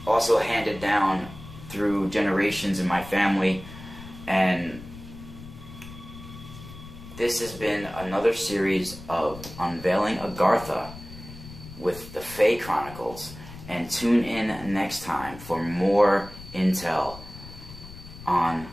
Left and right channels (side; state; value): left; noise; rumble, 15 dB below the sound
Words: also handed down through generations in my family. And this has been another series of Unveiling Agartha. with the Fae Chronicles, and tune in next time for more intel on